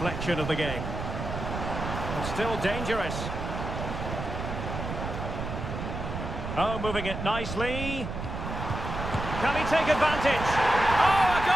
of the game. And still dangerous. Oh, moving it nicely. Can he take advantage? Oh, a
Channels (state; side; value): noise; right; rumble, 5 dB below the sound